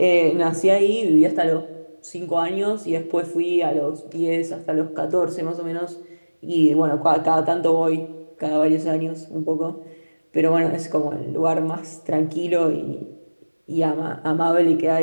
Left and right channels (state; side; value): inverted; both; correlation -1.00